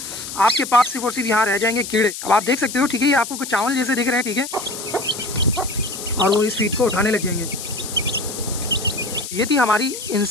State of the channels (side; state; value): left; noise; hiss, 9 dB below the sound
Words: आपके पास सिर्फ और सिर्फ यहाँ रह जाएंगे कीड़े। अब आप देख सकते हो, ठीक है, ये आपको कुछ चावल जैसे दिख रहे हैं, ठीक है, और वो इस फीड को उठाने लग जाएंगे। ये थी हमारी